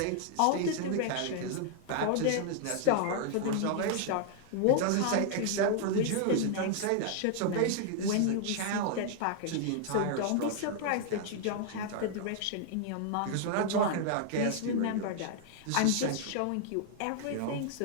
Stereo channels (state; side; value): different; both; correlation 0.00